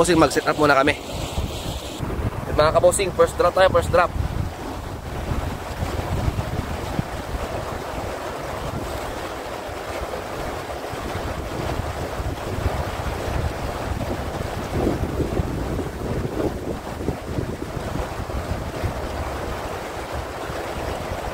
mag set up muna kami. Mga kabosing, first drop tayo, first drop.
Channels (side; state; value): both; identical; correlation 1.00